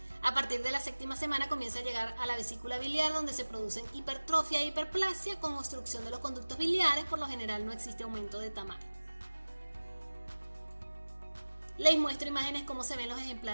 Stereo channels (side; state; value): both; inverted; correlation -1.00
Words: A partir de la 7ª semana comienza a llegar a la vesícula biliar, donde se producen hipertrofia e hiperplasia con obstrucción de los conductos biliares. Por lo general no existe aumento de tamaño. Les muestro imágenes cómo se ven los